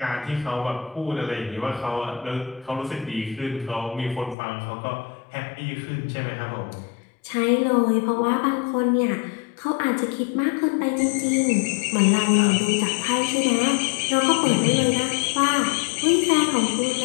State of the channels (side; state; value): right; drops out; at 4.4 s